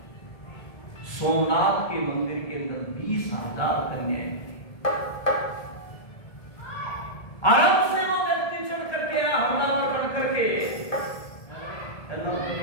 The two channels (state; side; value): late; right; 1.7 ms